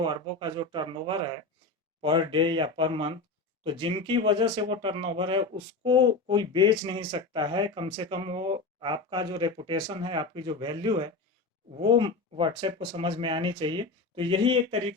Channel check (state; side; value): quieter; right; 3.7 dB